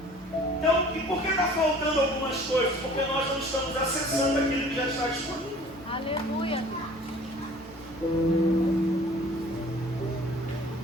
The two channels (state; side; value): normal; both; correlation 0.49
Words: Então, e por que está faltando algumas coisas? Porque nós não estamos acessando aquilo que já está disponível. Aleluia.